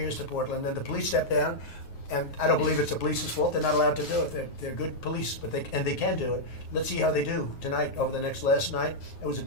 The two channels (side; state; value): right; late; 9.4 ms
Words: to Portland. Then the police stepped down, And I don't believe it's the police's fault. They're not allowed to do it. They're good police, but they can do it. Let's see how they do tonight over the last night. It was a